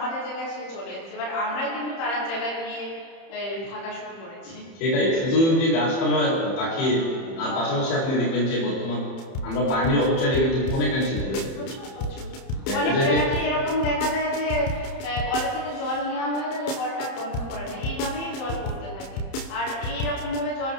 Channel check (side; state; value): right; late; 30 ms